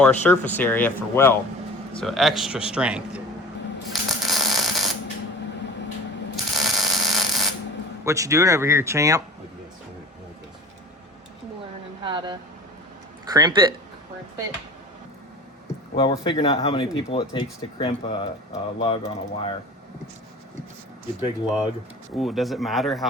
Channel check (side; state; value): both; normal; correlation 0.41